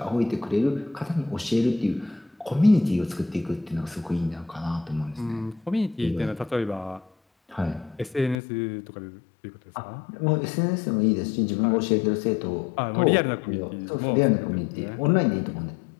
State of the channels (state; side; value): drops out; right; at 8.3 s